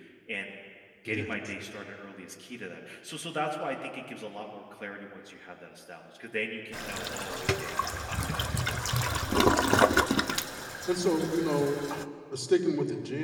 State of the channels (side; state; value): both; identical; correlation 1.00